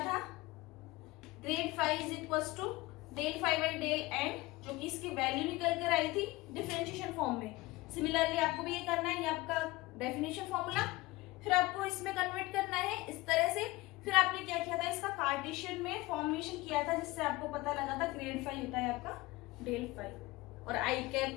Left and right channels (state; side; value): quieter; right; 20.7 dB